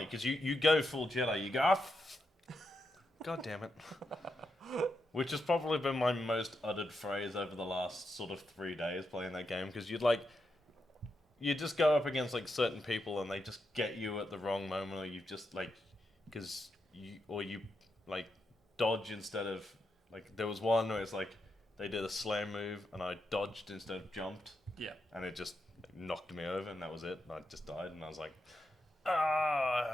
because you go full Jedi, you go, God damn it. Which has probably been my most uttered phrase over the last sort of 3 days playing that game, because you just go up against like certain people and they just get you at the wrong moment, or you just like, you like dodge instead of, like, there was one where it's like, they did a slam move and I dodged instead of jumped. Yeah. And it just knocked me over and that was it. And I just died and I was like,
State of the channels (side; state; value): both; normal; correlation 0.85